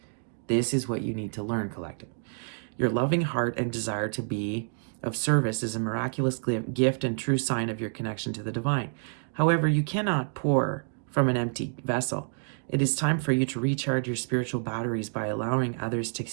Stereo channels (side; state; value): left; silent; digital silence